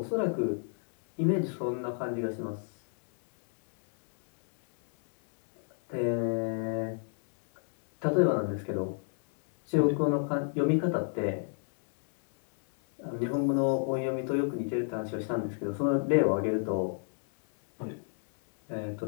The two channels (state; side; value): silent; right; 58 dB below the other